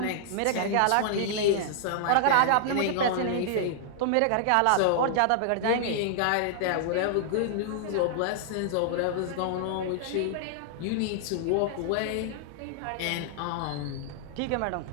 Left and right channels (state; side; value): different; both; correlation -0.01